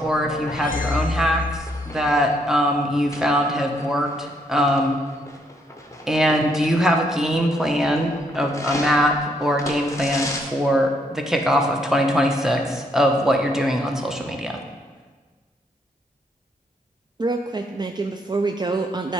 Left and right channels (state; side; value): normal; both; correlation 0.72